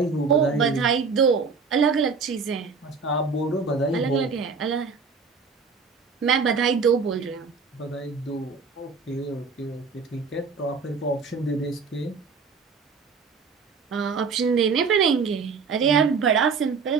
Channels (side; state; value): left; quieter; 5.1 dB